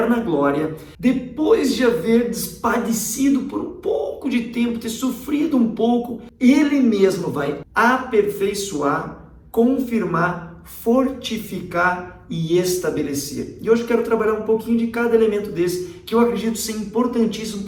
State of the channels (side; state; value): both; identical; correlation 1.00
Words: glória, depois de haver padecido por um pouco de tempo, ter sofrido um pouco, Ele mesmo vai aperfeiçoar, confirmar, fortificar e estabelecer." E hoje eu quero trabalhar um pouquinho de cada elemento desse, que eu acredito ser importantíssimo